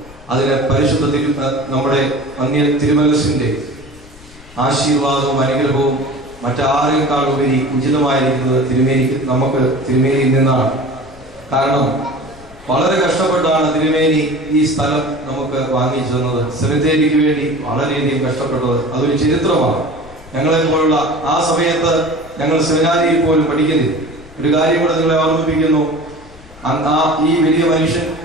അതിന് പരിശുദ്ധ നമ്മുടെ അന്യ തിരുമനസിന്റെ ആശീർവാദവും അനുഗ്രഹവും മറ്റാരെക്കാൾ ഉപരി ഉചിതമായിരിക്കുന്നത് തിരുമേനിയിൽ നിന്നാണ്. കാരണം വളരെ കഷ്ടപ്പെട്ടാണ് തിരുമേനി ഈ സ്ഥലം നമുക്ക് വാങ്ങിച്ചു തന്നത്. സെമിത്തേരിക്ക് വേണ്ടി വളരെയധികം കഷ്ടപ്പെട്ടത് അതൊരു ചരിത്രമാണ്. ഞങ്ങളെ പോലുള്ള ആ സമയത്ത് ഞങ്ങൾ സെമിനാരിയിൽ പോലും പഠിക്കുന്നില്ല. ഒരു കാര്യം കൂടെ നിങ്ങളെ ഓർമ്മിപ്പിക്കുന്നു. ഈ വലിയ മനുഷ്യൻ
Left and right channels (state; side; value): noise; left; rumble, 22 dB below the sound